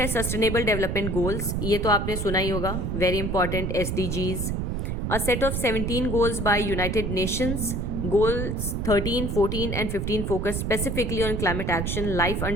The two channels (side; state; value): right; noise; rumble, 1 dB below the sound